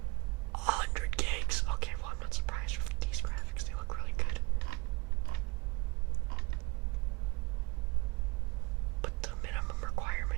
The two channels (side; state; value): left; quieter; 26.8 dB